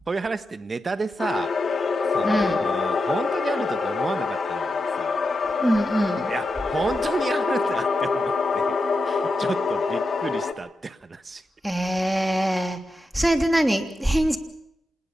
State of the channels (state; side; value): normal; both; correlation 0.88